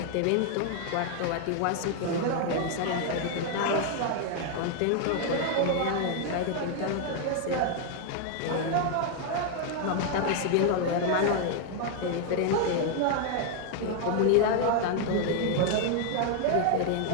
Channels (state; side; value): different; both; correlation 0.00